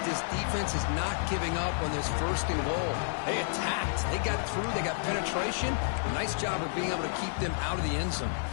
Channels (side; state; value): right; silent; digital silence